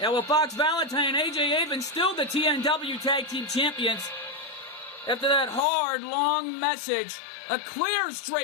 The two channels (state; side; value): drops out; right; at 5.7 s